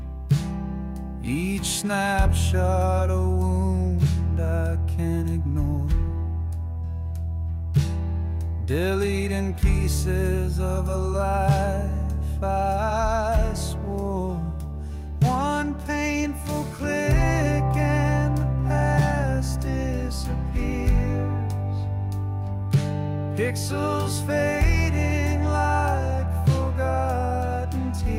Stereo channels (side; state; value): both; identical; correlation 1.00